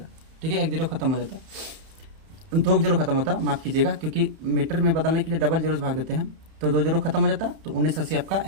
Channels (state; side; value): late; left; 31 ms